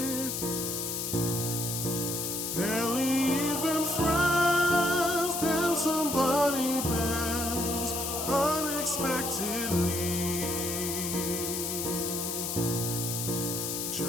barely even friends, then somebody bends unexpectedly.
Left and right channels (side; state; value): left; noise; hiss, 2 dB below the sound